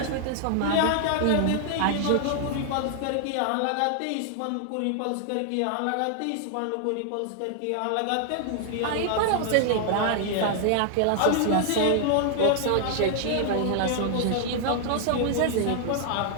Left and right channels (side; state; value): both; different; correlation 0.00